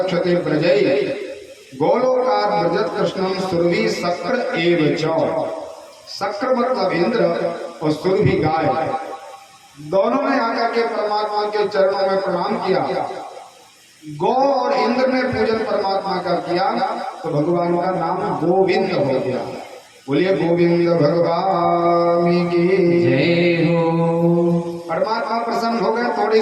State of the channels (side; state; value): both; identical; correlation 1.00